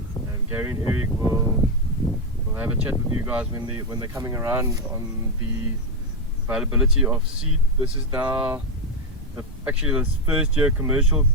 Gary and Eric will have a chat with you guys when they're coming around on the availability of seed. This is now actually this first year commercial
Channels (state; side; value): normal; both; correlation 0.06